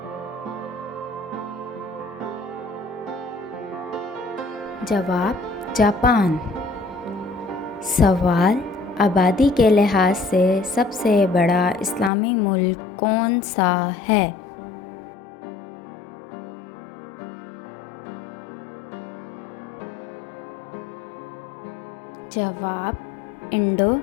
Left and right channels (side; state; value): right; drops out; at 12.1 s